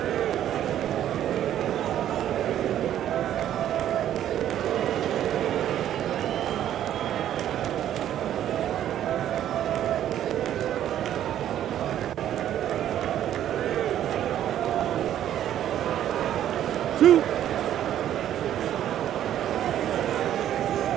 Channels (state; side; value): quieter; left; 11.3 dB